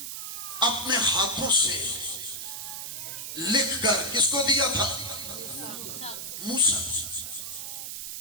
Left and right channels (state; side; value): noise; right; hiss, 6 dB below the sound